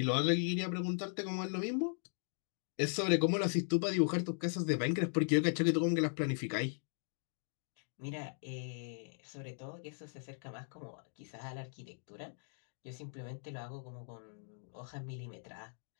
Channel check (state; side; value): silent; right; digital silence